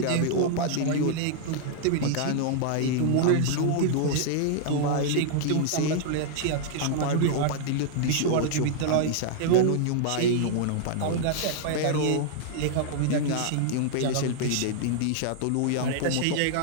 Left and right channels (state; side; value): different; both; correlation -0.01